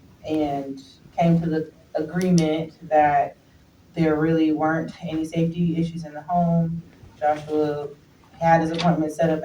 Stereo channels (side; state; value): both; identical; correlation 1.00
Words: and came to the agreement that there really weren't any safety issues in the home. Joshua had his appointment set up